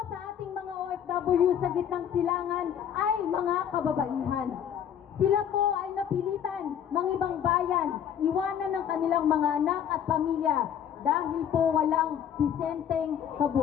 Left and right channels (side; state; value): right; quieter; 9.1 dB